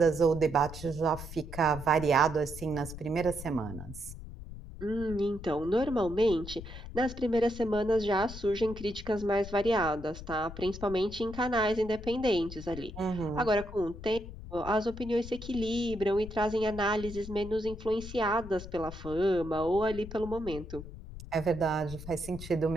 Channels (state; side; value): noise; left; rumble, 12 dB below the sound